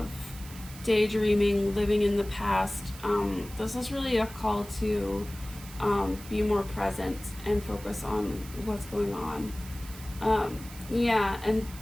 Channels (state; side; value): noise; right; hiss, 17 dB below the sound